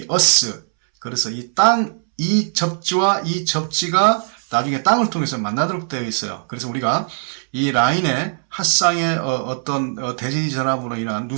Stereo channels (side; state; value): left; silent; 66 dB below the other